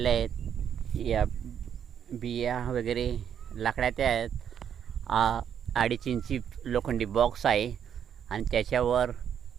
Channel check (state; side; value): quieter; left; 8.7 dB